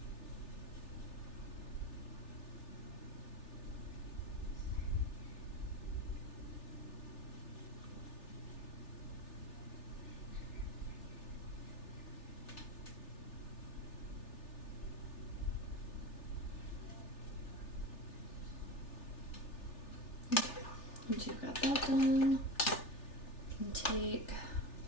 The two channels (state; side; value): late; right; 3.4 ms